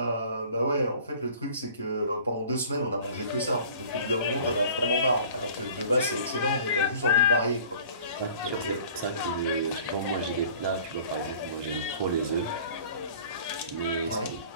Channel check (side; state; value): both; inverted; correlation -0.48